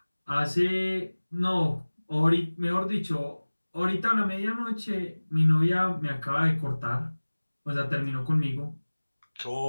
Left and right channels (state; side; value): inverted; both; correlation -1.00